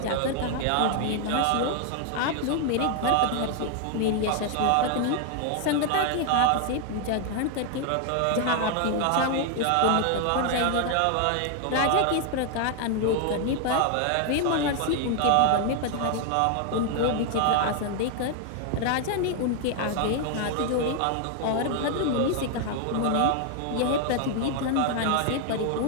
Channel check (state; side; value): different; both; correlation 0.00